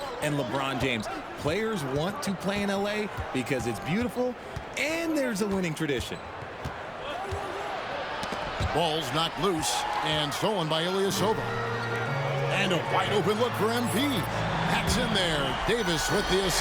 and LeBron James. Players want to play in LA because it's beautiful and there's a winning tradition. Ball's knocked loose and stolen by Ilyasova. And a wide open look for MP. That's in there. Davis with the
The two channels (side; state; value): both; identical; correlation 1.00